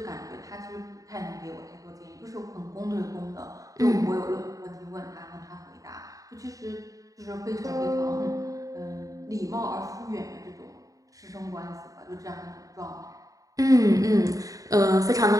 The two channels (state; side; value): late; left; 0.17 ms